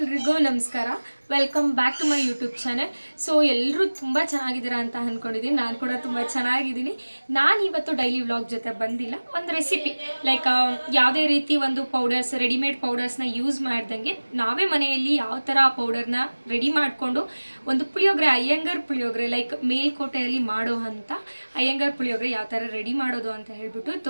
ನಮಸ್ಕಾರ. Welcome back to my YouTube channel. So ಎಲ್ಲರೂ ತುಂಬ ಚೆನ್ನಾಗಿದ್ದೀರಾ ಅಂತ ಅಂದ್ಕೊಂಡಿದ್ದೀನಿ. ನಾನು ಕೂಡ ತುಂಬ ಚೆನ್ನಾಗಿದ್ದೀನಿ. ನಾನು ಇವತ್ತು ಡೈಲಿ ವ್ಲಾಗ್ ಜೊತೆ ಬಂದಿಲ್ಲ, ಒಂದು ರೆಸಿಪಿ ಲೈಕ್ ಯಾವುದೇ ರೀತಿ ಒಂದು ಪೌಡರ್ಸ್, ರೆಡಿಮೇಡ್ ಪೌಡರ್ಸ್ನ ಯೂಸ್ ಮಾಡ್ದಂಗೆ ನಾವೇ ಮನೆಯಲ್ಲಿ ಯಾವ ಥರ ಆ ಪೌಡರ್ನ ರೆಡಿ ಮಾಡಿಕೊಂಡು ಒಂದು ಪುಳಿಯೋಗರೆ, ಅಯ್ಯಂಗಾರ್ ಪುಳಿಯೋಗರೆ ಲೈಕ್ ಮೇಲ್ಕೋಟೆಯಲ್ಲಿ ಮಾಡೋ ಅಂಥ ಅಯ್ಯಂಗಾರ್ ಪುಳಿಯೋಗರೆ ಯಾವ ಥರ ರೆಡಿ ಮಾಡೋದು ಅಂತ ಹೇಳ್ಬಿಟ್ಟು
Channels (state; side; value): inverted; both; correlation -1.00